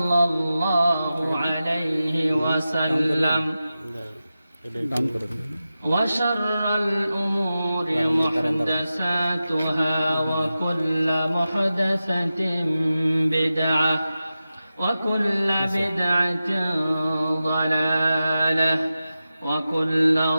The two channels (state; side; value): inverted; both; correlation -0.93